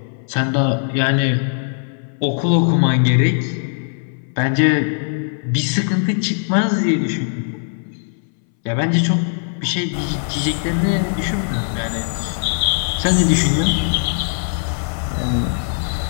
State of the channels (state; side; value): silent; right; 62 dB below the other